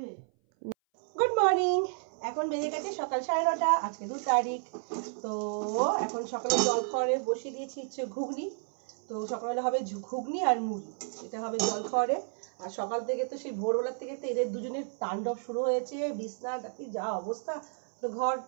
গুড মর্নিং, এখন বেজে গেছে সকাল 9:30, আজকে 2 তারিখ। তো এখন সকালে জল খাওয়ারে বসিয়ে দিয়েছি হচ্ছে ঘুগনি। তো সকালবেলা হবে ঘুগনি আর মুড়ি, এটা হবে জল খাওয়ারে। আর সকাল থেকে তো সেই ভোরবেলার থেকে তো এদের দুজনের তাণ্ডব শুরু হয়েছে, বিছনা ডাকি যা অবস্থা। তো ঘর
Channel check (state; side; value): silent; left; 57 dB below the other